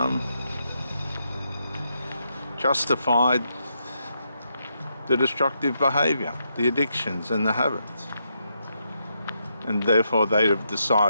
justified the destructive behavior, the addictions and the habits. And therefore they have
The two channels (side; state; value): both; inverted; correlation -0.81